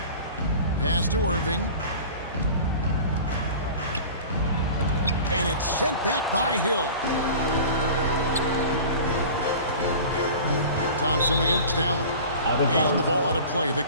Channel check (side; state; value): both; inverted; correlation -0.39